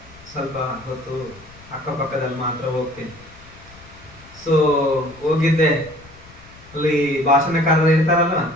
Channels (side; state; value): left; noise; rumble, 23 dB below the sound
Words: ಸ್ವಲ್ಪ ಹೊತ್ತು ಅಕ್ಕಪಕ್ಕದಲ್ಲಿ ಮಾತ್ರ ಹೋಗ್ತೀನಿ. ಸೊ ಹೋಗಿದ್ದೆ. ಅಲ್ಲಿ ಭಾಷಣಕಾರರು ಇರ್ತಾರಲ್ಲ,